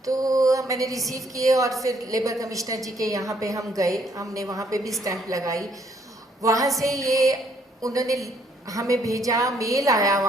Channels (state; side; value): normal; both; correlation 0.67